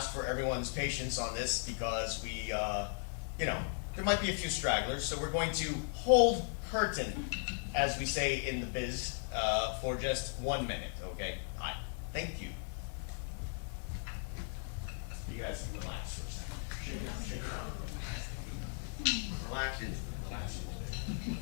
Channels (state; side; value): silent; right; 53 dB below the other